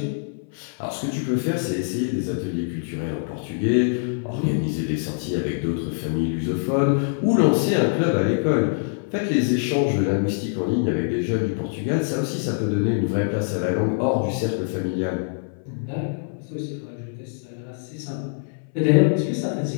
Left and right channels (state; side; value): silent; right; 62 dB below the other